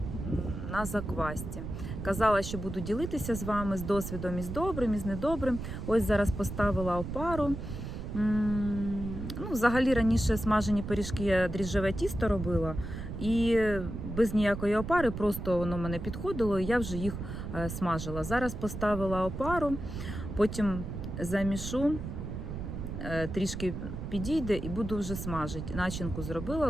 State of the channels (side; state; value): right; noise; rumble, 7 dB below the sound